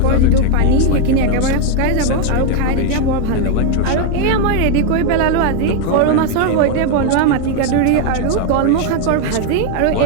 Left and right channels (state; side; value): different; both; correlation 0.01